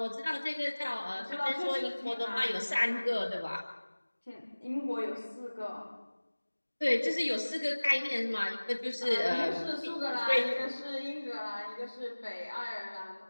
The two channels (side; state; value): both; inverted; correlation -1.00